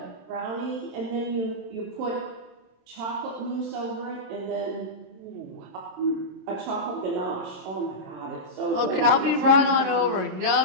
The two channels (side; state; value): left; late; 27 ms